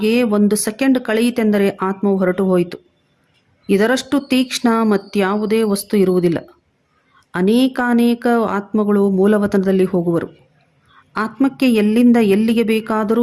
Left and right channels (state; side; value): identical; both; correlation 1.00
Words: 1 ಸೆಕೆಂಡ್ ಕಳೆಯಿತೆಂದರೆ ಆತ್ಮವು ಹೊರಟು ಹೋಯಿತು. ಇದರಷ್ಟು ತೀಕ್ಷ್ಣ ಮತ್ಯಾವುದೇ ವಸ್ತು ಇರುವುದಿಲ್ಲ. ಅನೇಕಾನೇಕ ಆತ್ಮಗಳು ಮೂಲವತನದಲ್ಲಿ ಹೋಗುವರು. ಆತ್ಮಕ್ಕೆ ಎಲ್ಲಿಂದ ಎಲ್ಲಿಗೆ